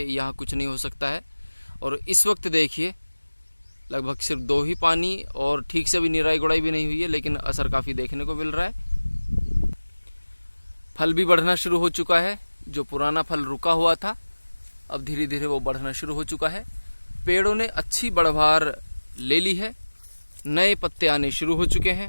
कुछ नहीं हो सकता है। और इस वक्त देखिए लगभग सिर्फ 2 ही पानी और ठीक से भी निराई गुड़ाई भी नहीं हुई है, लेकिन असर काफ़ी देखने को मिल रहा है। फल भी बढ़ना शुरू हो चुका है। जो पुराना फल रुका हुआ था अब धीरे धीरे वो बढ़ना शुरू हो चुका है। पेड़ों ने अच्छी बढ़वार ले ली है, नए पत्ते आने शुरू हो चुके हैं।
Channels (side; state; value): both; inverted; correlation -1.00